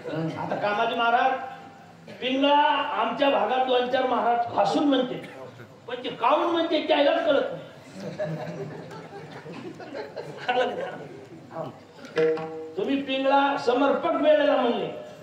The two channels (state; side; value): identical; both; correlation 1.00